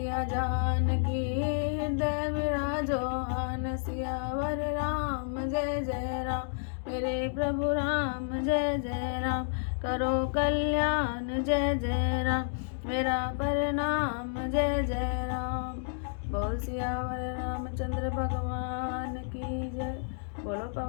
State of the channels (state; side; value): silent; right; digital silence